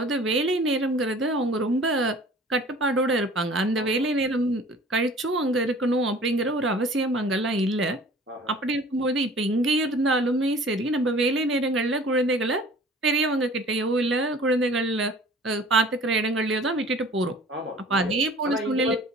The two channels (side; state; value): both; normal; correlation 0.47